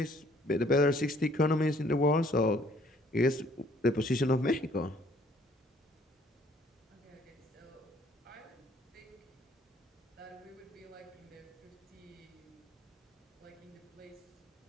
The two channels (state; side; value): normal; both; correlation 0.61